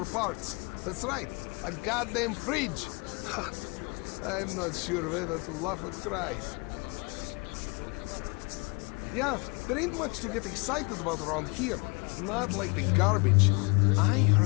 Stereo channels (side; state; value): right; quieter; 30.1 dB